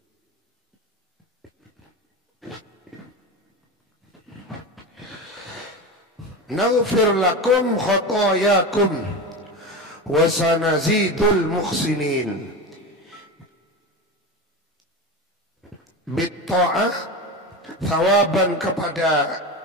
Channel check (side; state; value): both; normal; correlation 0.24